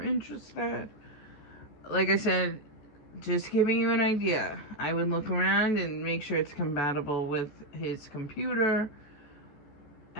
interested. Like I said, just giving you an idea. I would look around and make sure it's compatible with his computer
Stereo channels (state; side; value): late; right; 14 ms